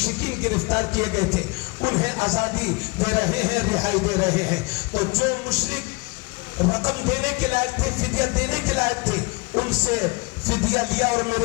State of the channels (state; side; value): quieter; right; 27.1 dB